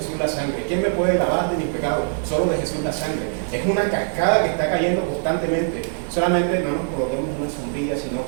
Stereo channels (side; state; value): left; silent; digital silence